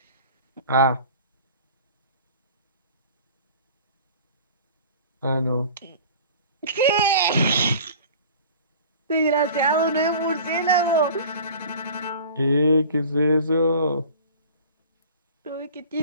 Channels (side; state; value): both; inverted; correlation -0.43